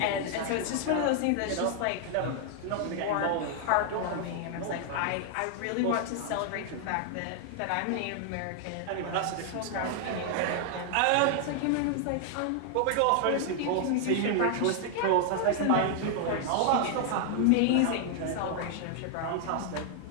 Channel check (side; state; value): both; different; correlation 0.00